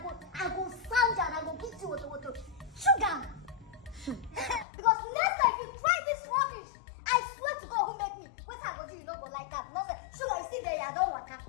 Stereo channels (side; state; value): right; drops out; at 4.7 s